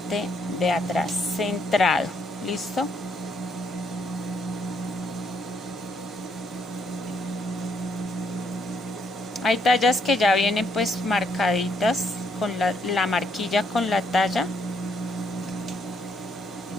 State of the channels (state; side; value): normal; both; correlation 0.73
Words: de atrás, centrado. ¿Listo? Hay tallas que ya vienen pues marcaditas con la marquilla con la talla.